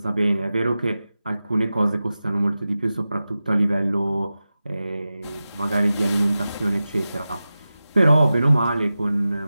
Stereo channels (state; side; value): inverted; both; correlation -0.94